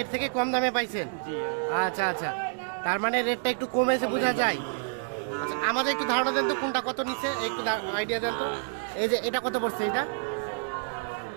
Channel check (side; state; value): left; silent; digital silence